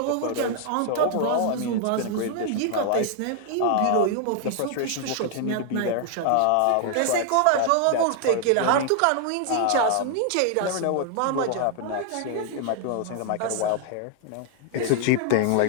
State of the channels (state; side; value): different; both; correlation 0.00